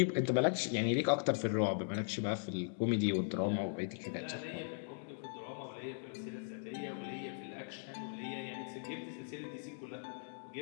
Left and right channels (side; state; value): right; silent; digital silence